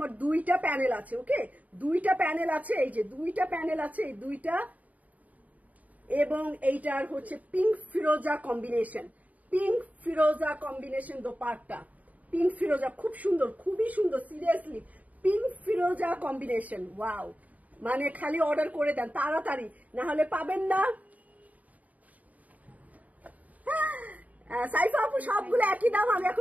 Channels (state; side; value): late; left; 0.073 ms